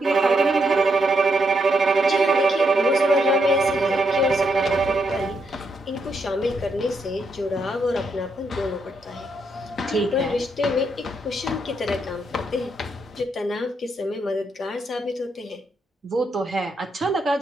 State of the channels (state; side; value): normal; both; correlation 0.78